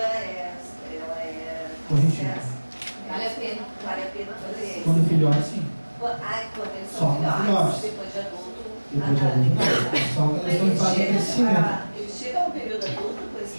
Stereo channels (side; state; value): both; inverted; correlation -1.00